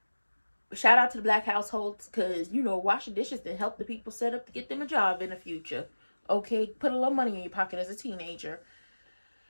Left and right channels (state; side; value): inverted; both; correlation -1.00